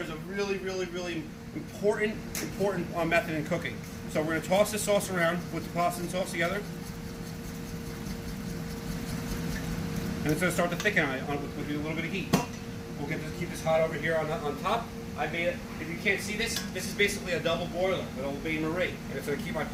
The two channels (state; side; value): identical; both; correlation 1.00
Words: a really important method in cooking. So we're going to toss the sauce around, put the pasta and sauce together, and it's going to start to thicken with a little bit of heat. We'll keep this hot over here on top. I made it. If you can't see this, this is basically a double boiler with Old Bay Marie, and it's going to keep my